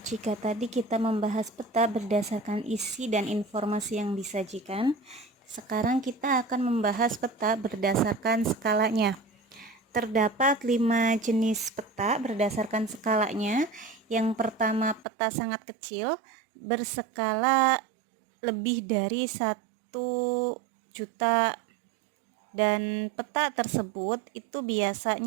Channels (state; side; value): drops out; left; at 15.1 s